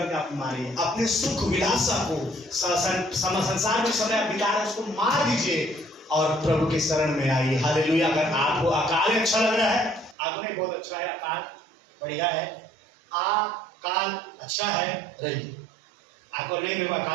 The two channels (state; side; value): drops out; left; at 10.2 s